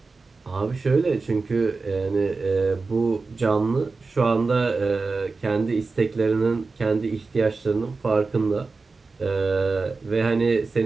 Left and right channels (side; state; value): left; quieter; 4.0 dB